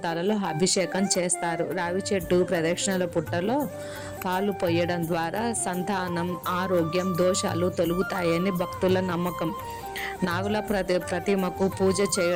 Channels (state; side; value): identical; both; correlation 1.00